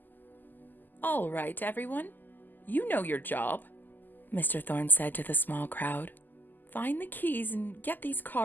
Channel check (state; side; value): late; right; 0.087 ms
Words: "All right, everyone. You know your job, Mr. Thorne said to the small crowd. Find the keys and get these